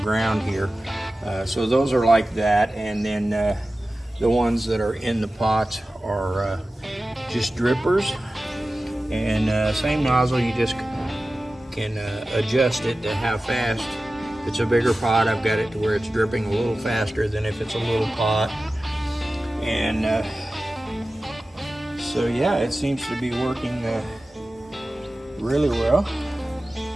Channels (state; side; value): normal; both; correlation 0.95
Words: here. So those are like that, and then the ones that are in the pots are just drippers. And same nozzle, you just can adjust it to how fast. If it's a bigger pot, I've got it to where it's dripping a little faster than if it's a little pot. And so yeah, it seems to be working really well.